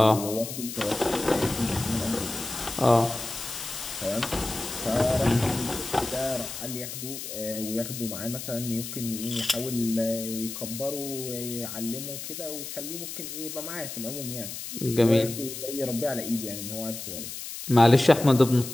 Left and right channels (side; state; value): left; noise; hiss, 8 dB below the sound